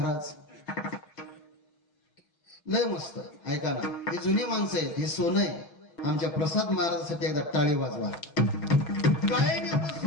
लय मस्त. ऐका ना, हे जुने माणसं आहेत, हे सोनं आहे. आमच्या प्रसाद महाराजांसाठी एकदा टाळी वाजवा. गायन एवढं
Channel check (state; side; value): late; right; 6.0 ms